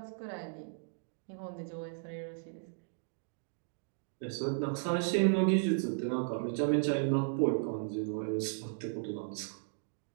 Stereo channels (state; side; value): silent; left; digital silence